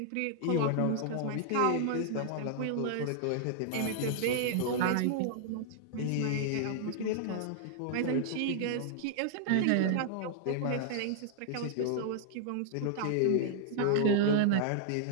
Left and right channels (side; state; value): both; different; correlation -0.01